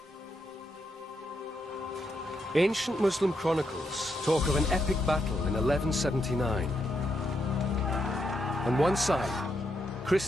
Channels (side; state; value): both; normal; correlation 0.81